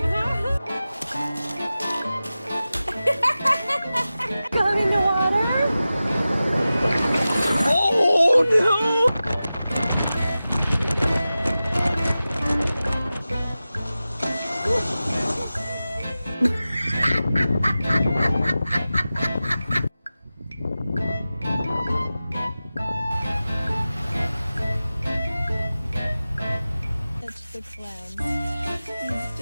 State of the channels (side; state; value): both; inverted; correlation -0.95